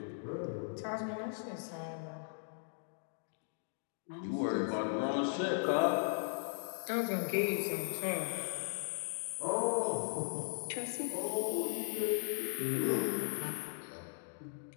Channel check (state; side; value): silent; right; digital silence